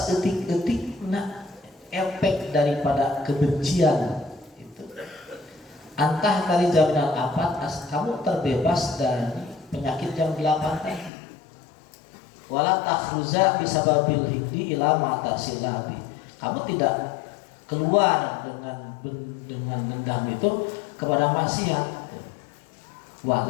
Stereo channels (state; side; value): drops out; right; at 11.1 s